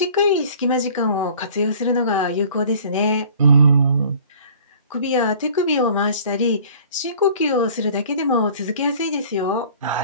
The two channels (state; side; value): inverted; both; correlation -0.49